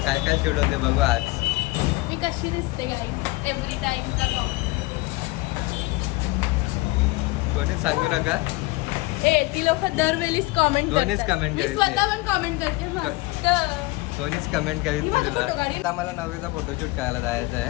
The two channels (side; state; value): right; quieter; 22.1 dB